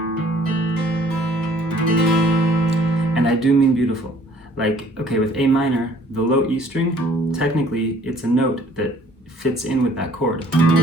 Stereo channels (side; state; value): both; normal; correlation 0.57